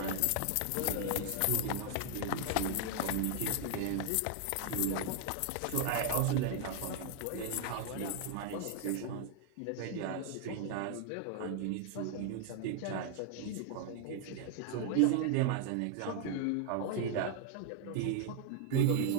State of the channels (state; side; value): different; both; correlation 0.00